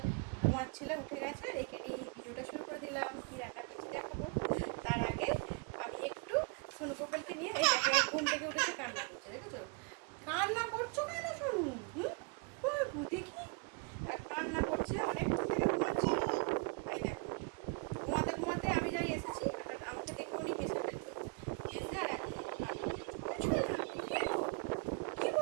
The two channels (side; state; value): left; quieter; 32.0 dB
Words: ঘুমাচ্ছিল, উঠে গেছে। আর একে নিয়ে ভিডিওটা শুরু করে দিলাম। কি রান্না করছি দেখাবো। তার আগে আমি একটু সোনু গোপালকে নিয়ে, এই দেখো ঘুম থেকে উঠেছে, কান্না করছে, দেখেছো? কান্না করছো কেন সোনু? দেখি কান্না করছে, অনেকক্ষণ থেকে ঘুমাচ্ছি। এই দেখো ঘুমাতে ঘুমাতে আমি যাই এসেছি, আর আমাকে দেখে উনি হেসে ফেলতো, এসে আর এখন আমার কান্না করছে। কি